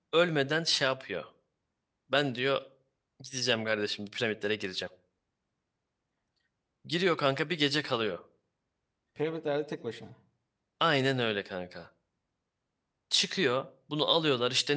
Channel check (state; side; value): identical; both; correlation 1.00